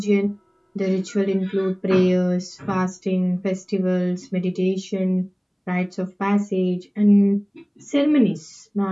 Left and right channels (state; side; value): identical; both; correlation 1.00